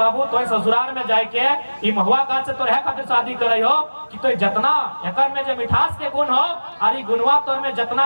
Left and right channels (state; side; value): inverted; both; correlation -1.00